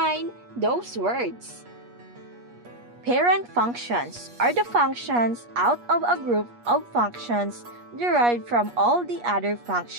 those words. Parent functions are the functions out of a group of functions derived from all the other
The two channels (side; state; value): left; late; 8.4 ms